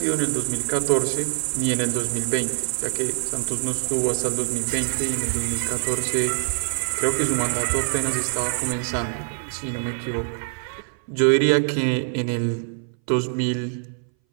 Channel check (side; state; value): left; silent; 60 dB below the other